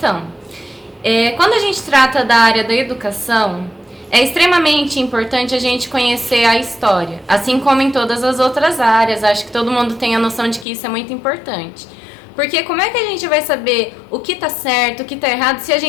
quando a gente trata da área da educação, é extremamente importante a gente conhecer a história, assim como em todas as outras áreas. Acho que todo mundo tem a noção de que isso é muito importante. Porque como é que a gente vai saber o que está certo, o que está errado, se a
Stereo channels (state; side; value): drops out; right; at 10.7 s